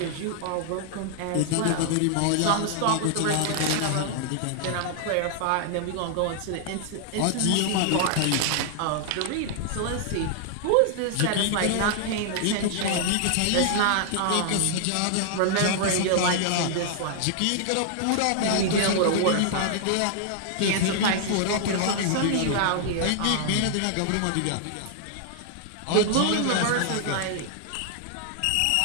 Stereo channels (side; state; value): both; different; correlation 0.00